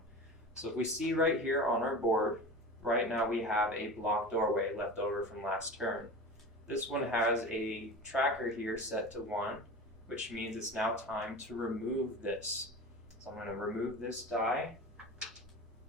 So if we see right here on our board, right now we have a blocked doorway left over from last turn. This one has a tracker here set to 1, which means it's now time to remove this. So I'm going to remove this die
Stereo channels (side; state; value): both; normal; correlation 0.32